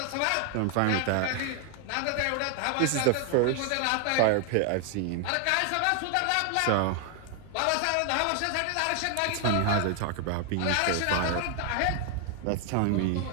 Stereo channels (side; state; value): both; different; correlation 0.00